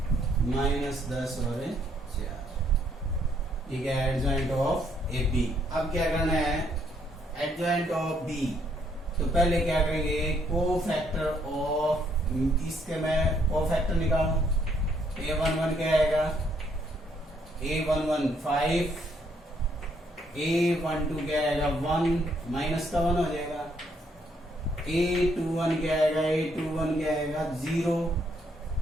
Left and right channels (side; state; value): both; normal; correlation 0.70